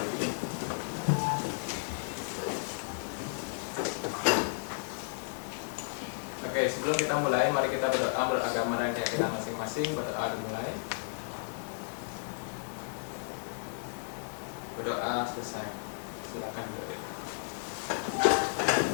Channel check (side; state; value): right; silent; 56 dB below the other